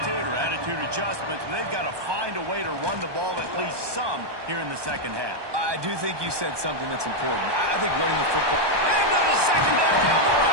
adjustments. But they've got to find a way to run the ball at least some here in the second half. I do think you said something that's important. I think running the football. Into the secondary on the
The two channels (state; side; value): late; left; 1.2 ms